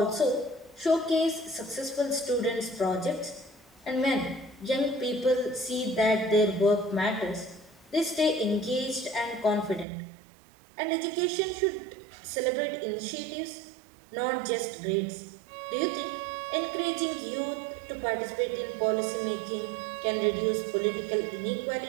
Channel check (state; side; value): drops out; left; at 9.9 s